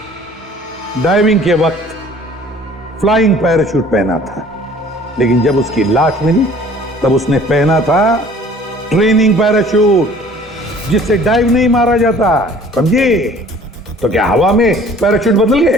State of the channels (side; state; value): both; normal; correlation 0.51